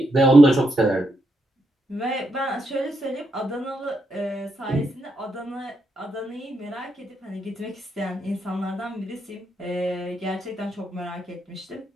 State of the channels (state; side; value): normal; both; correlation 0.80